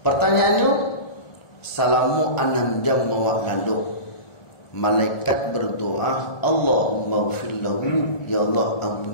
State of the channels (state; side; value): late; right; 1.4 ms